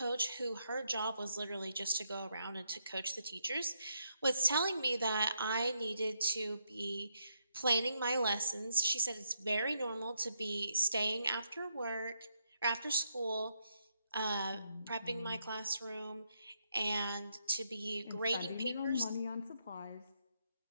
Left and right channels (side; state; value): both; inverted; correlation -0.77